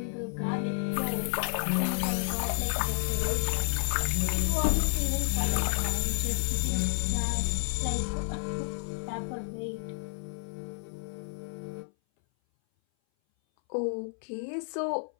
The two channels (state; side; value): silent; right; 57 dB below the other